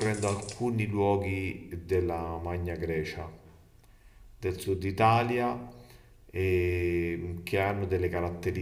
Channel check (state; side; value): identical; both; correlation 1.00